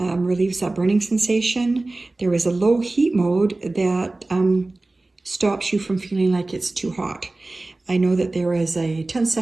that burning sensation. There is a low heat mode that stops you from feeling like it's too hot. I know that there is a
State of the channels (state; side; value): quieter; left; 3.0 dB